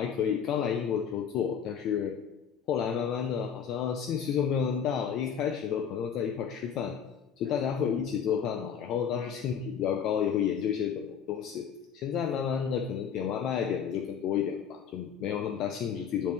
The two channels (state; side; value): quieter; right; 7.7 dB